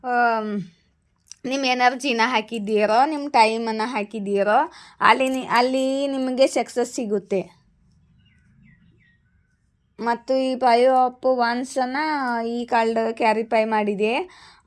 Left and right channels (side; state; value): both; identical; correlation 1.00